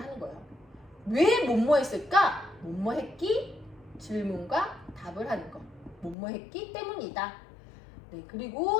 거예요. 왜 뭐뭐했을까? 뭐뭐했기? 질문과 답을 하는 거. 뭐뭐했기 때문이다. 네,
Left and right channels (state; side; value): drops out; right; at 6.2 s